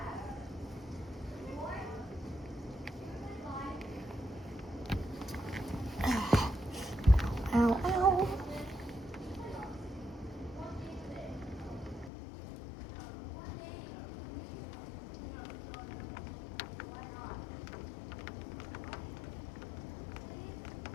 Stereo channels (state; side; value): drops out; right; at 12.1 s